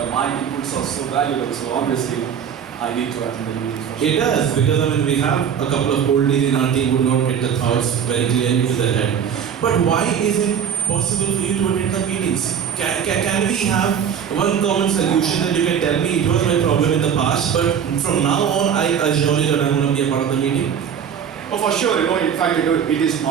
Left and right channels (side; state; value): left; quieter; 8.0 dB